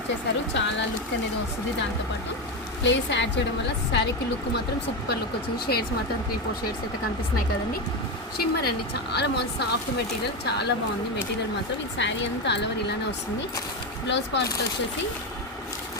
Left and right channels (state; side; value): normal; both; correlation 0.13